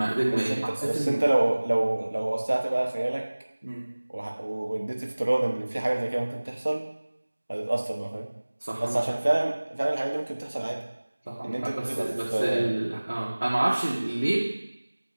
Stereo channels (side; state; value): both; inverted; correlation -1.00